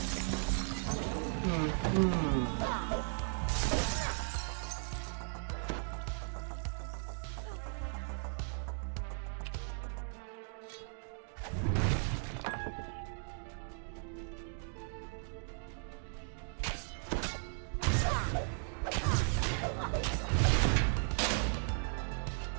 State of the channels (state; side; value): silent; left; 53 dB below the other